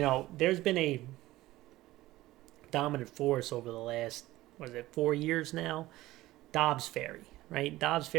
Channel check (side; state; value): left; quieter; 17.0 dB